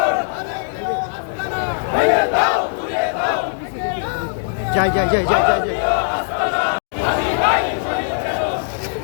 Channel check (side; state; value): right; silent; digital silence